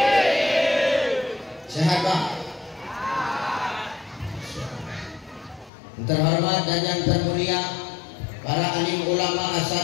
Sehat Pak. Terhormat dan yang termulia para alim ulama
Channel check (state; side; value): drops out; right; at 5.7 s